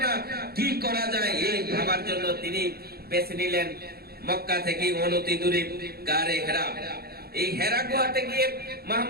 না, কি করা যায়? এই ভাবার জন্য তিনি বেছে নিলেন মক্কা থেকে অনতি দূরে গারে হেরা। এই হেরা গুহাতে গিয়ে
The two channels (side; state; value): left; late; 0.45 ms